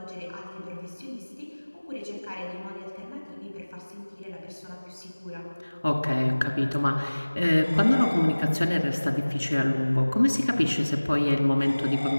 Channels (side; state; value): both; inverted; correlation -1.00